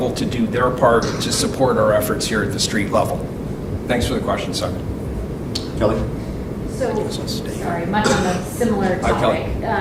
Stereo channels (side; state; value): both; identical; correlation 1.00